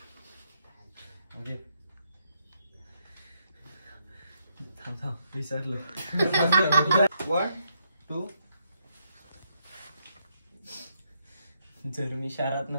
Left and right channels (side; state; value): both; inverted; correlation -0.75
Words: विसरलो. 1 2. जर मी शहरात